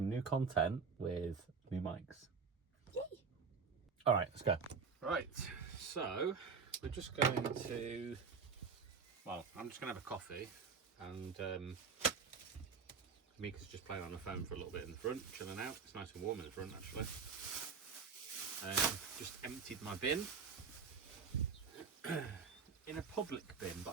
new content with new mics. Yay. All right, let's go. Right, so we're just going to, well, I'm just going to have a coffee, and Amika's just playing on the phone for a little bit in the front, chilling out. It's nice and warm in the front, actually. Just emptied my bin in a public bin, but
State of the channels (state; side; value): quieter; left; 5.5 dB